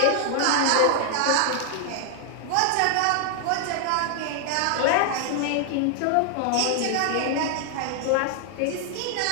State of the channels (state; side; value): different; both; correlation 0.00